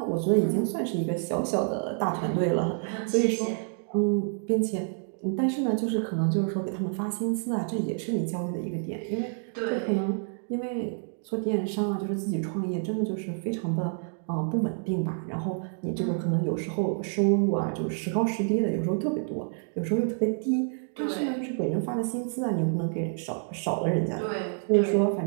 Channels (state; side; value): silent; left; 59 dB below the other